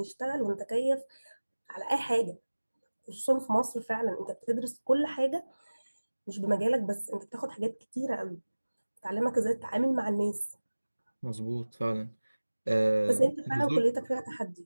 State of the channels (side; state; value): both; inverted; correlation -1.00